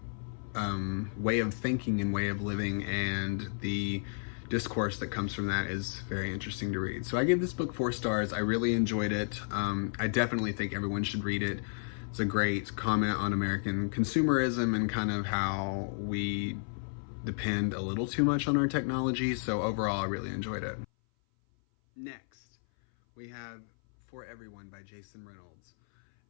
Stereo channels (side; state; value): right; silent; 56 dB below the other